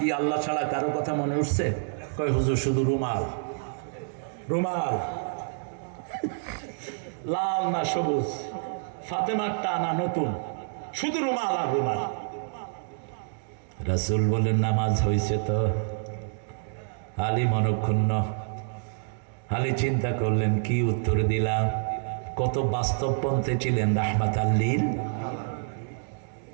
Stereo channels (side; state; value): left; silent; digital silence